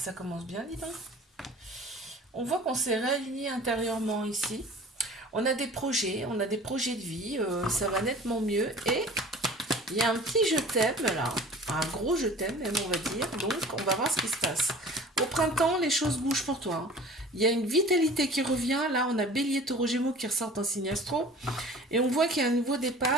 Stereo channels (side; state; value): both; normal; correlation 0.44